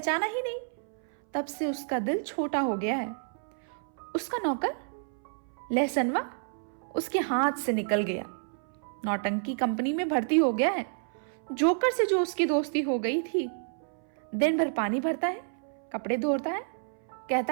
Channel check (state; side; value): silent; left; 58 dB below the other